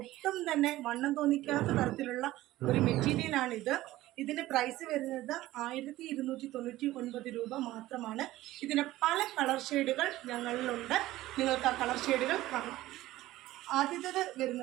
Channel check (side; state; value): left; quieter; 16.2 dB